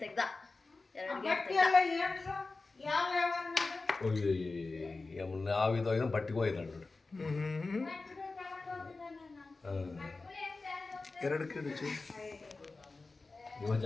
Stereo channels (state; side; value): quieter; right; 3.7 dB